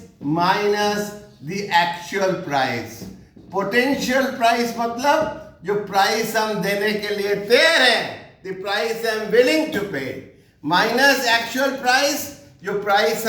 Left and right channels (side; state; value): both; identical; correlation 1.00